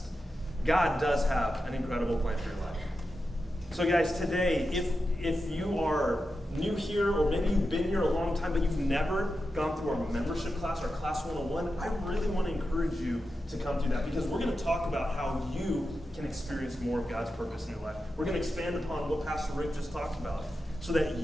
God does have an incredible plan for your life. So guys, today, if you are new here, or maybe you've been here a long time, but you've never gone through our membership class, our Class 101, I really want to encourage you to come through that, because we're going to talk about how you can experience more of God's purpose in your life. We're going to expand upon what Pastor Rick just talked about, so that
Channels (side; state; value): both; normal; correlation 0.90